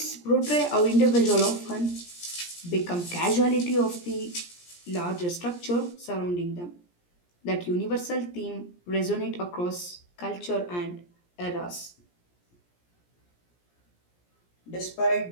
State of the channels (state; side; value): late; right; 17 ms